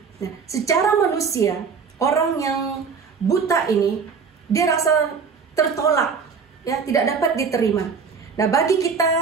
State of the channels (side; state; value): left; quieter; 5.6 dB